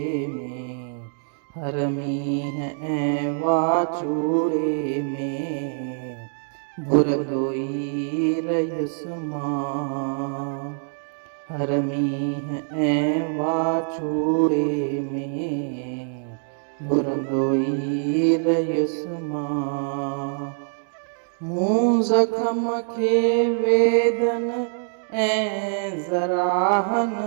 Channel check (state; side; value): silent; left; digital silence